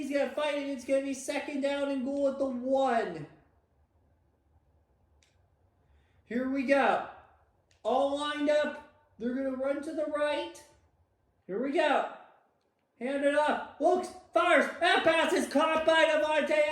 going to fight it. It's going to be 2nd down and goal at the 1. Here we go. All lined up. They're going to run to the right. Here we go. Hand it up. Looks, fires. That pass is caught by Davante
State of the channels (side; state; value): both; identical; correlation 1.00